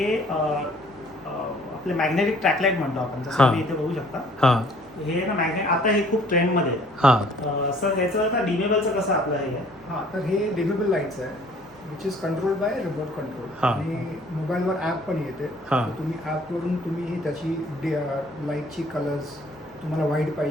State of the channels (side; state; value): both; normal; correlation 0.57